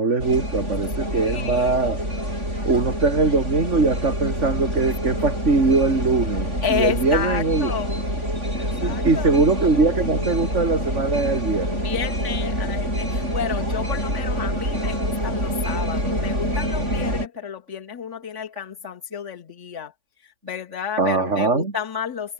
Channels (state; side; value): late; left; 3.5 ms